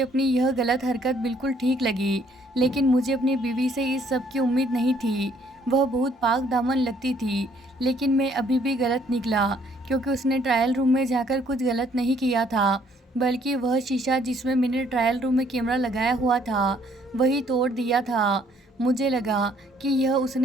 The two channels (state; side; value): normal; both; correlation 0.64